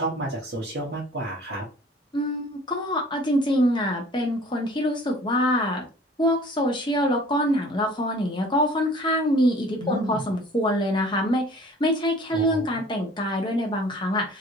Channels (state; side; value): normal; both; correlation 0.49